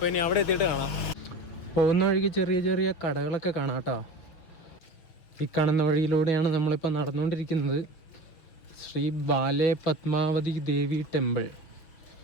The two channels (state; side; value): late; right; 5.9 ms